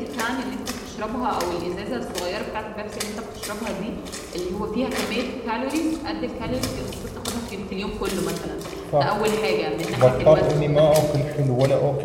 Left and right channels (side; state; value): both; identical; correlation 1.00